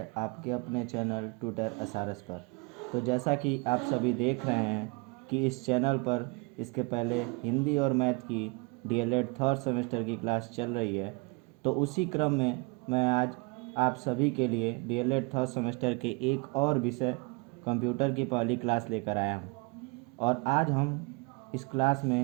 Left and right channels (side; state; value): left; quieter; 29.4 dB